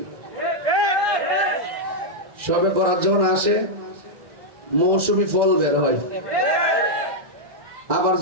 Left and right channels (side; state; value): left; late; 2.0 ms